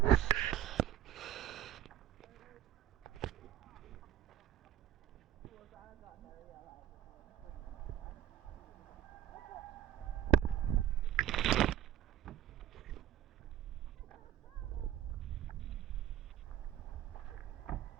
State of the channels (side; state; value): left; quieter; 11.8 dB